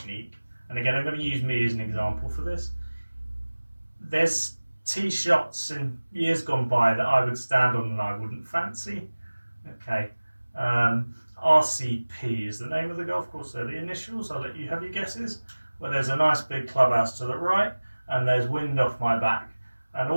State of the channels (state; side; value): inverted; both; correlation -1.00